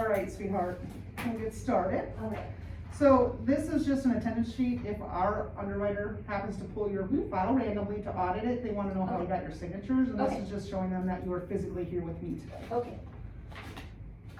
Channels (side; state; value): both; identical; correlation 1.00